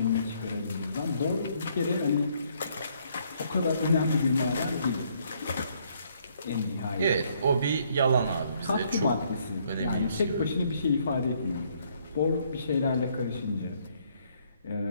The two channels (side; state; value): both; inverted; correlation -0.68